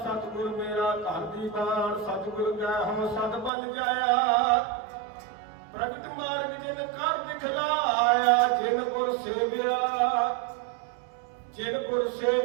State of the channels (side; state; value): left; drops out; at 3.5 s